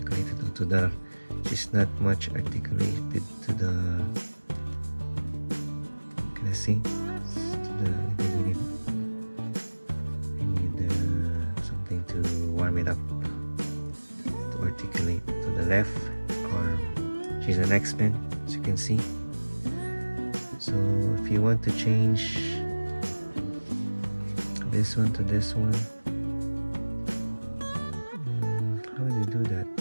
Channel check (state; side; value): inverted; both; correlation -1.00